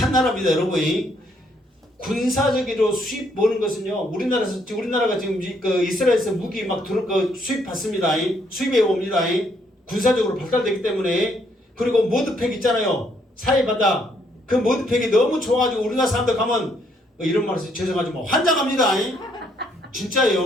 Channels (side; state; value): both; normal; correlation 0.70